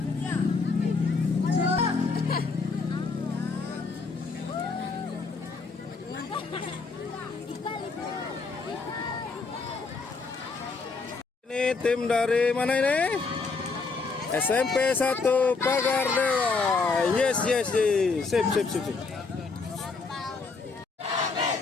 Ini tim dari mana ini? SMP 1 Pagar Dewa. Yes. Sip.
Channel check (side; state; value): right; quieter; 4.3 dB